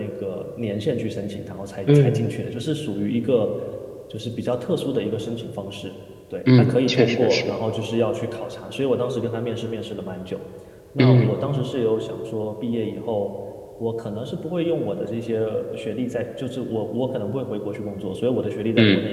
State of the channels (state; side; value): identical; both; correlation 1.00